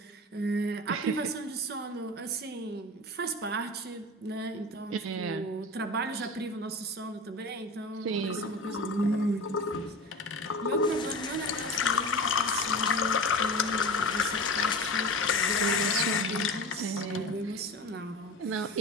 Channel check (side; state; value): both; normal; correlation 0.31